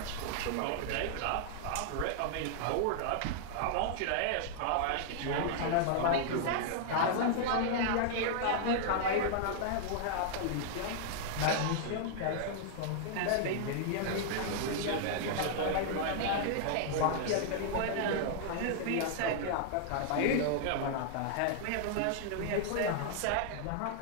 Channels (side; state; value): both; different; correlation -0.01